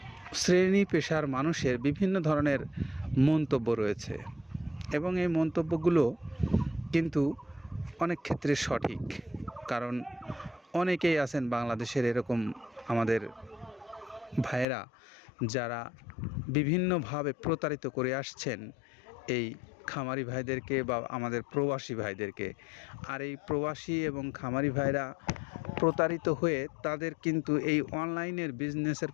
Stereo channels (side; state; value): right; drops out; at 14.7 s